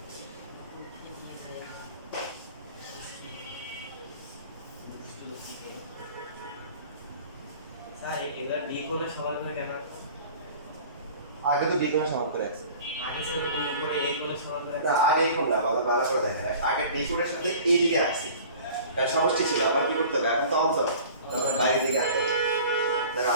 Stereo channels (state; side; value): inverted; both; correlation -0.44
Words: স্যার এবার B কোণের সমান করে কেন আগে তো D কোণের সমান করে আছে আগে ছিল B করে A কোণের সমান করে না আগে এখন না ভালো করে দেখেন আগে D কোণের সাথে এই দিকে আসছে তার সমষ্টি ছিল আবার কি করতে হবে এখন তো অন্তর তখন বাইরের দিকে আসতে হবে দেখো